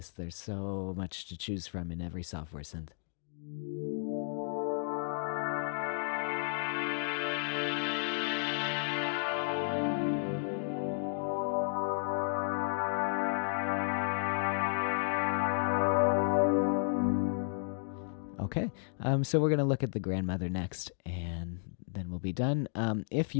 There's so much to choose from in every software synth. Okay, so we're going to look at the Grandmother next, and then we'll be done. If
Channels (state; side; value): silent; right; digital silence